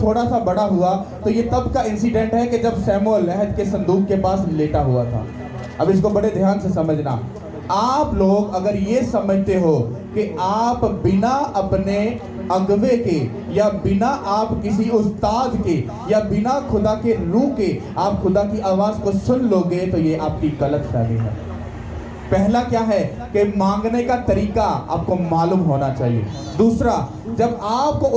थोड़ा सा बड़ा हुआ तो ये तब का इंसिडेंट है कि जब शमूएल अहद के संदूक के पास लेटा हुआ था। अब इसको बड़े ध्यान से समझना। आप लोग अगर ये समझते हो कि आप बिना अपने अगवे के या बिना आप किसी उस्ताद के या बिना खुदा के रूह के आप खुदा की आवाज को सुन लोगे तो ये आपकी गलत फहमी है। पहला क्या है कि मांगने का तरीका आपको मालूम होना चाहिए। दूसरा, जब आपको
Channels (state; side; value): identical; both; correlation 1.00